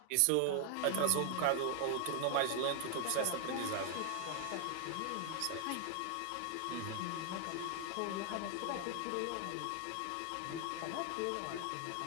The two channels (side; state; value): both; different; correlation 0.00